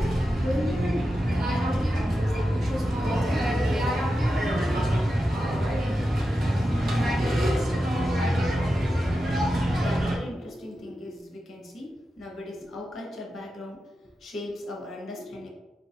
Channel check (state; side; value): normal; both; correlation 0.90